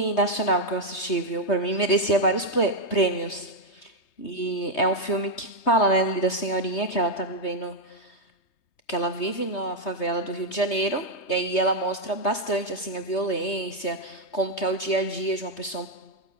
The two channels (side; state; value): right; late; 3.2 ms